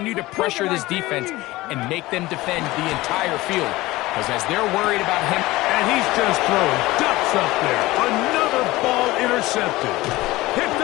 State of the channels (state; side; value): quieter; right; 19.0 dB